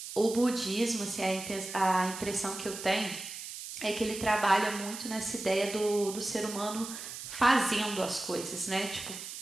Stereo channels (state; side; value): noise; right; hiss, 9 dB below the sound